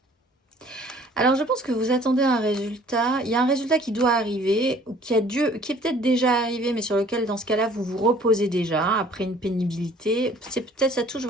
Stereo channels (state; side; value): normal; both; correlation 0.54